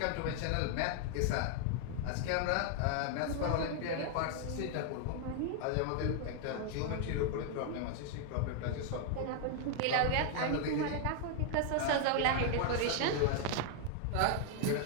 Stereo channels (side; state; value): both; different; correlation 0.00